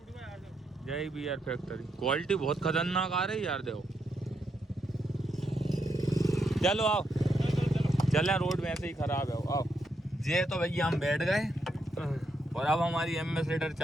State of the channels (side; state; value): both; normal; correlation 0.79